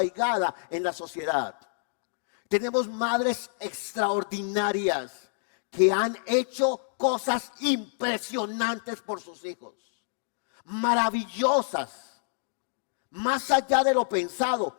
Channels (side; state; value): right; silent; digital silence